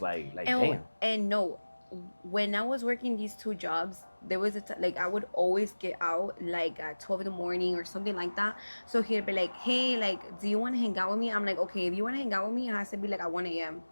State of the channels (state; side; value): inverted; both; correlation -1.00